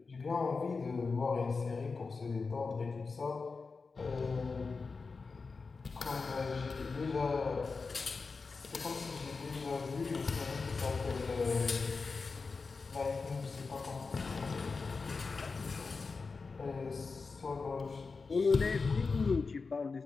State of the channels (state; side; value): quieter; right; 4.4 dB